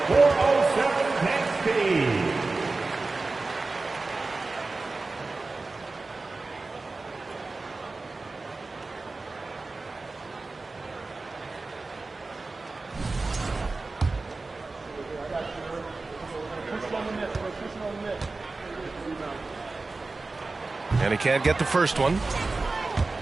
407 tank speed. And he can't get the first one.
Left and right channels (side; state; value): left; quieter; 3.6 dB